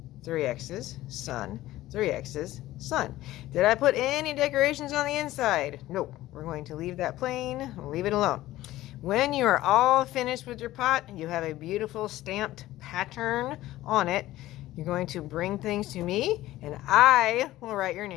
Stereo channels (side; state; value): right; quieter; 15.8 dB